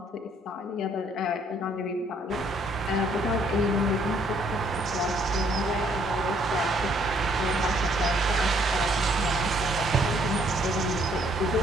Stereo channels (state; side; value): normal; both; correlation 0.66